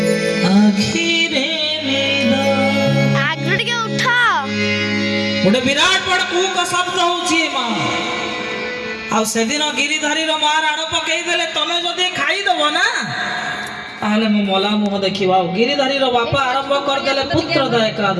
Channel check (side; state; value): both; identical; correlation 1.00